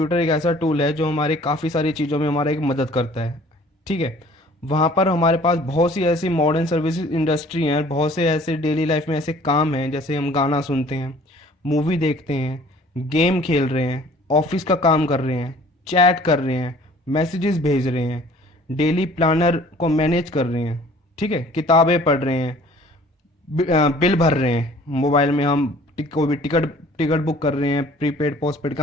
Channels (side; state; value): both; normal; correlation 0.52